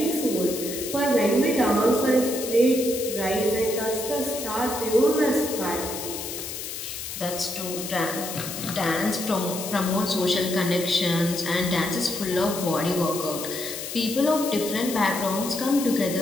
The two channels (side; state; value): left; noise; hiss, 7 dB below the sound